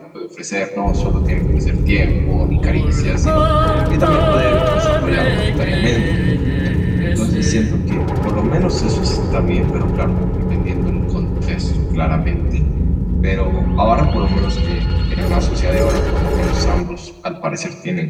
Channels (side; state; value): both; identical; correlation 1.00